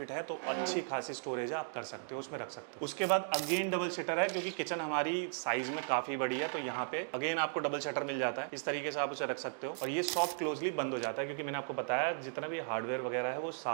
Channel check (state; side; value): silent; left; digital silence